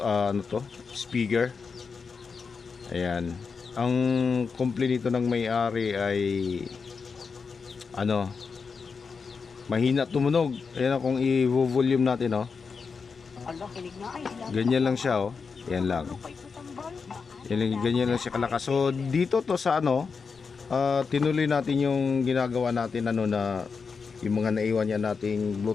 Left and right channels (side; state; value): right; quieter; 5.2 dB